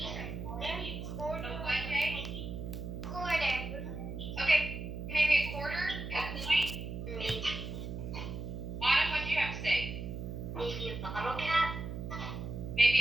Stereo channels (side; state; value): right; noise; hum, 6 dB below the sound